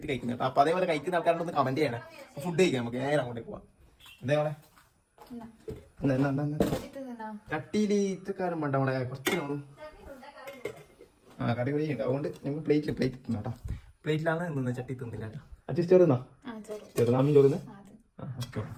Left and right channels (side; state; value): both; identical; correlation 1.00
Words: കഴിക്കുന്നത് കേട്ടോ. അപ്പൊ അതേപോലെ കഴിക്കുന്ന ആൾക്കാരോട് കമന്റ് ചെയ്യണേ. ഫുഡ് കഴിക്കാം. നമുക്ക് നേരെ അങ്ങോട്ടേക്ക് പോവാം. എന്തേപോലെ ചട്ടിയിൽ ഇത്രക്കാരും വേണ്ട. അവിടെ കുറച്ച് നോളും കറി കൂടി ഉണ്ട്. അതുകൊണ്ട് ഞങ്ങൾ പ്ലേറ്റ് തിന്നു കേട്ടോ. പ്ലേറ്റിലാണ് നിന്ന് ചട്ടി തിന്നില്ല കേട്ടോ. അച്ഛൻ ചോറുന്നാ ചെറുതാമീൻ ചോറുന്ന്. ഓക്കെ.